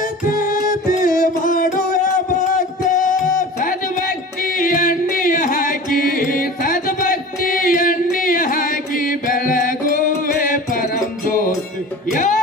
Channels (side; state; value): both; normal; correlation 0.37